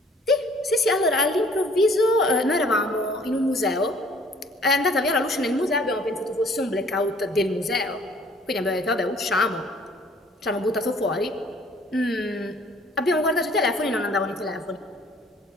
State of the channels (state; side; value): normal; both; correlation 0.56